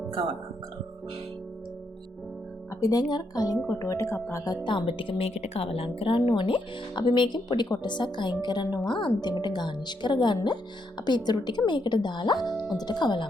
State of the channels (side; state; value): both; normal; correlation 0.78